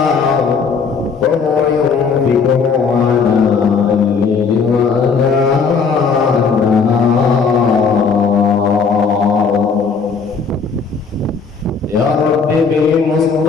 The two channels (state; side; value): quieter; right; 5.4 dB